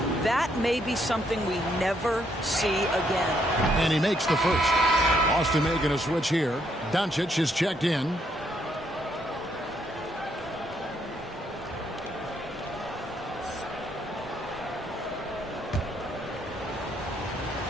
that may be something we never see again. And he makes the first. Austin making a switch here. Doncic is checked in.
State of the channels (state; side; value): normal; both; correlation 0.73